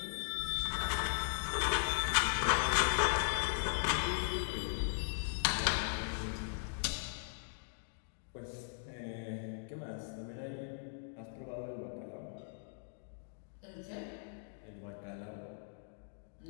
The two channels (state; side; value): silent; right; digital silence